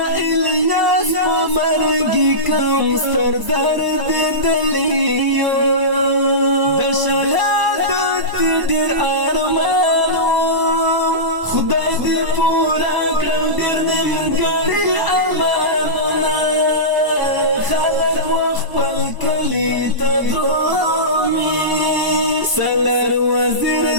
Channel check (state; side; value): late; left; 1.0 ms